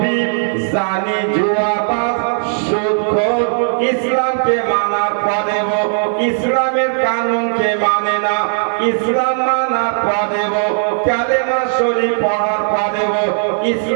জানি, জুয়াবাজ, সুদখোর। ইসলামকে মানার পরেও ইসলামের কানুনকে মানে না, ইসলাম মানার পরেও কালেমা শরীফ পড়ার পরেও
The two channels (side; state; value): left; silent; digital silence